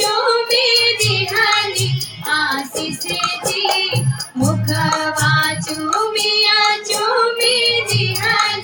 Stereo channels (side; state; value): both; identical; correlation 1.00